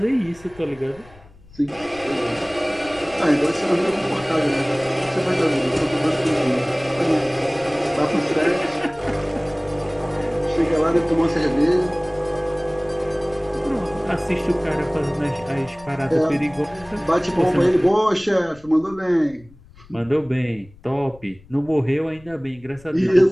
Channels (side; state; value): left; noise; rumble, 24 dB below the sound